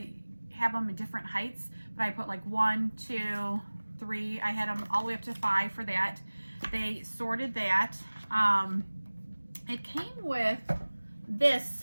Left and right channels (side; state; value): both; inverted; correlation -1.00